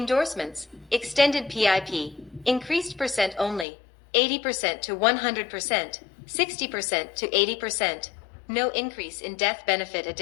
Extended PIP. Increased % only. 80% to 100%. 60% to 80%. No increase in death benefit.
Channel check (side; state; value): right; drops out; at 3.7 s